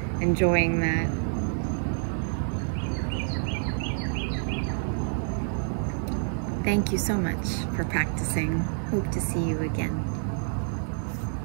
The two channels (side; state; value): left; silent; 59 dB below the other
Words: enjoying that. Thank you so much for practicing. Hope to see you again.